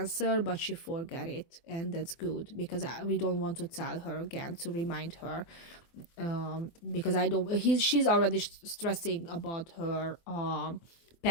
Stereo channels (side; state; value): right; late; 24 ms